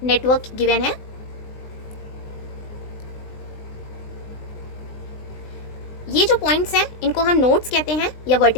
नेटवर्क गिवन है। ये जो पॉइंट्स हैं इनको हम नोड्स कहते हैं या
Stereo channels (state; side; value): late; right; 20 ms